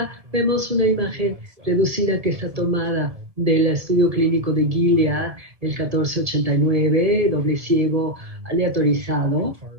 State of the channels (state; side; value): late; left; 1.7 ms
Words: vemos una imagen reducida que está tomada del estudio clínico de Gilead, el 1489, doble ciego aleatorizado,